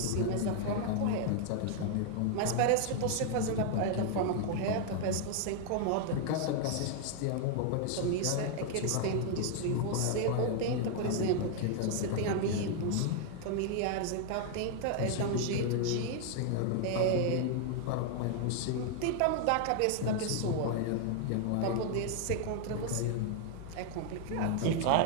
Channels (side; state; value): both; different; correlation 0.00